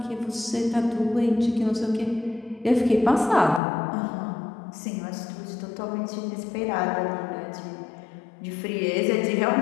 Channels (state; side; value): drops out; right; at 3.6 s